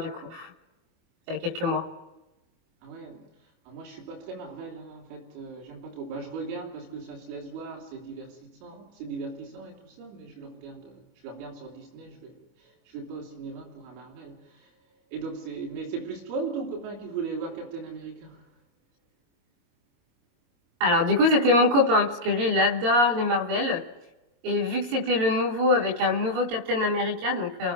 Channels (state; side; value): late; left; 25 ms